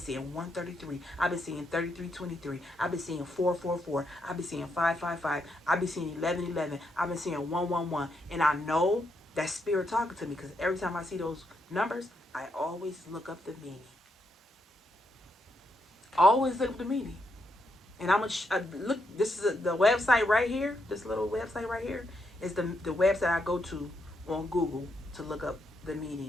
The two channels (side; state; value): both; normal; correlation 0.79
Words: 133. I've been seeing 3323. I've been seeing 444. I've been seeing 555. I've been seeing 1111. I've been seeing 111. And I know that spirit talking to me, because every time I see those numbers, I always look up the meaning. Always look up the meaning. And I'm gonna look. This is the website right here. This little website right here is the website I go to on Google to look up the